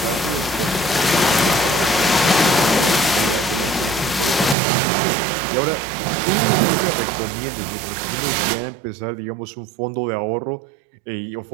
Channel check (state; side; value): drops out; left; at 4.5 s